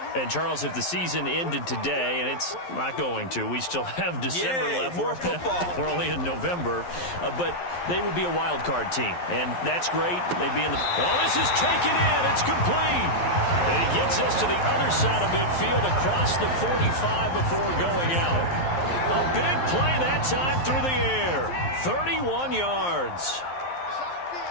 And, Charles, if the season ended today, and it's not going to, we still have December left. More football. We're only in November. But they would be a wild card team, and that's great. They'd be in the... Oh, this is taken in. It's complete. And he gets us to the other side of midfield across the 45 before going out. A big play that time through the air. 31 yards.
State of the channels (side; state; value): right; late; 11 ms